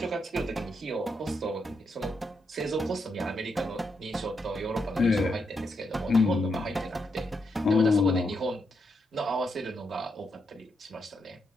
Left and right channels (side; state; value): both; normal; correlation 0.81